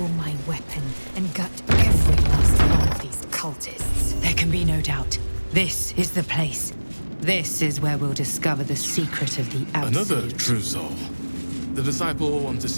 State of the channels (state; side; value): inverted; both; correlation -1.00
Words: my weapon and gut every last one of these cultists. There can be no doubt. This is the place. This is where we'll discover the secret of the Absolute. Another true soul. The disciple will want to